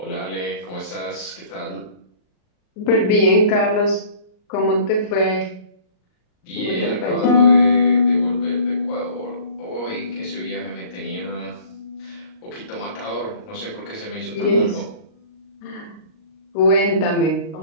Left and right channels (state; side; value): late; right; 38 ms